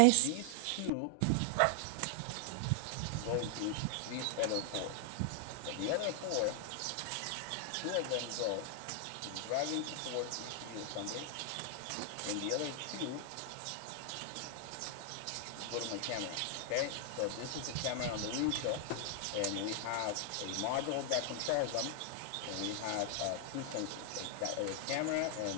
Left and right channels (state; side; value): different; both; correlation 0.00